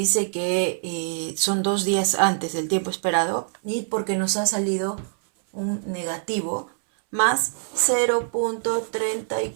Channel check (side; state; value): left; silent; 62 dB below the other